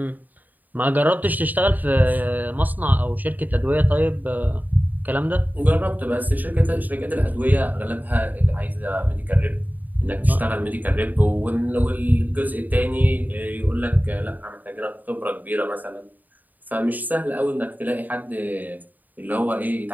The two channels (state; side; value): late; left; 0.084 ms